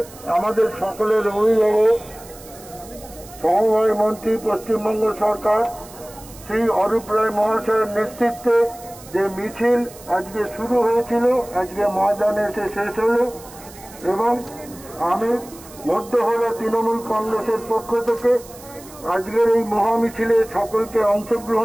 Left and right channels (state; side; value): noise; right; hiss, 19 dB below the sound